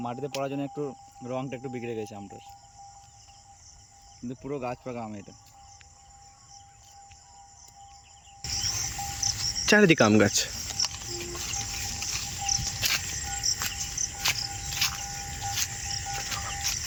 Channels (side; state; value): both; identical; correlation 1.00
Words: মাটিতে পড়ার জন্য একটু রংটা একটু বিগড়ে গেছে আমটার, কিন্তু পুরো গাছ পাকা আম এটা। চারিদিকে আম গাছ।